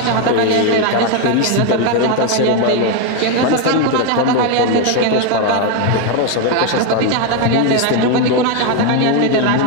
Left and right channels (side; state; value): both; different; correlation 0.01